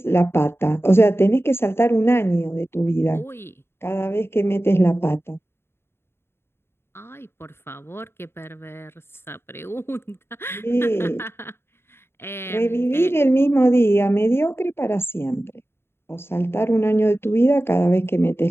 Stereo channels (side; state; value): right; late; 0.12 ms